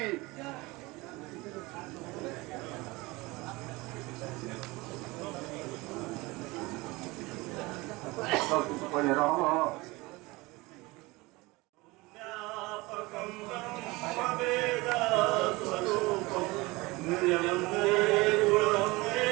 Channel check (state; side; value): quieter; left; 22.7 dB